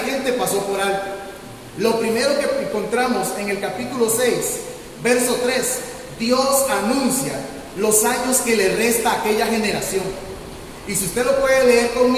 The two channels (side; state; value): both; identical; correlation 1.00